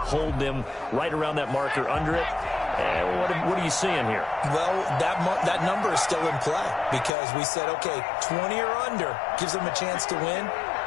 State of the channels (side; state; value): right; drops out; at 7.1 s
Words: them right around that marker under it. What are you seeing here? Well, that number is still in play because we said, okay, 20 or under gives them a chance to win.